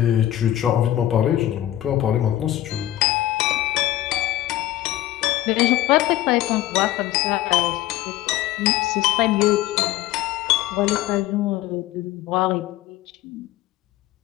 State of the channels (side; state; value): right; quieter; 14.0 dB